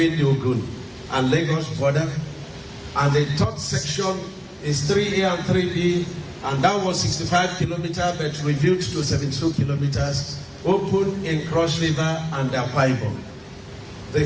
the Ogun and Lagos border. And the third section is 3A and 3B, and that was 65 kilometers but reviewed to 72 kilometers, opened in Cross River and Akwa Ibom. The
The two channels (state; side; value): identical; both; correlation 1.00